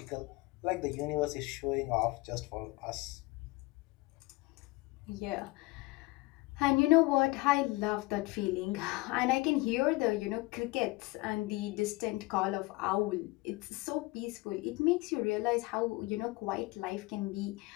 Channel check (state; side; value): quieter; right; 22.8 dB